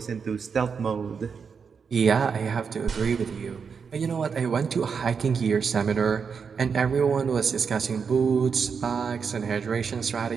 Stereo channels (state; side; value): quieter; left; 6.0 dB